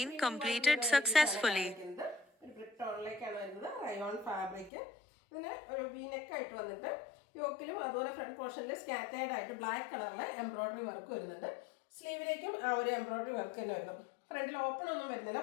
completed successfully. ഒരു ബ്രിക്ക് ടോണിലേക്കാണ് വരുന്നത്. Rayon fabric. ഇതിന് ഒരു വീനെക്ക് ആയിട്ട് വന്നിട്ട് യോക്കിലും അതുപോലെ ഫ്രണ്ട് പോർഷനിൽ സ്കാറ്റേർഡ് ആയിട്ട് ബ്ലാക്ക് കളറിൽ എംബ്രോയിഡറി വർക്ക് വരുന്നുണ്ട്. സ്ലീവിലേക്കും ആ ഒരു എംബ്രോയിഡറി വർക്ക് തന്നെ വരുന്നു. ഫ്രണ്ടിൽ ഓപ്പൺ ഒന്നും വരുന്നില്ല.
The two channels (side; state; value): right; drops out; at 4.7 s